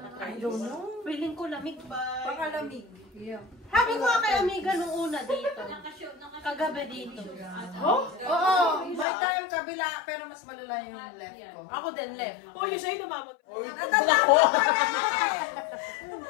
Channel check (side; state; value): right; drops out; at 9.1 s